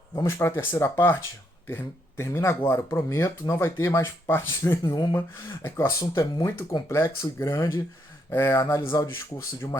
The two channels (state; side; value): normal; both; correlation 0.75